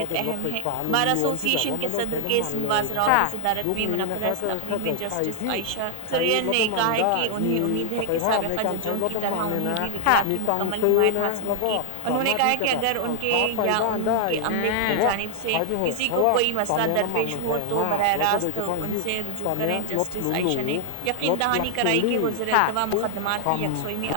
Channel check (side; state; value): both; different; correlation 0.00